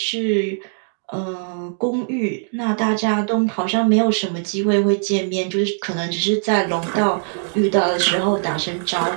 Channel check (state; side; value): silent; left; digital silence